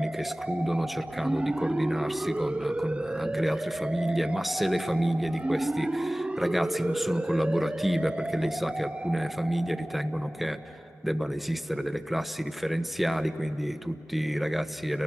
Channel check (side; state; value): both; normal; correlation 0.98